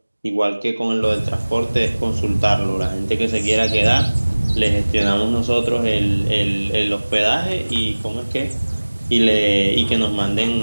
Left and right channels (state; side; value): inverted; both; correlation -1.00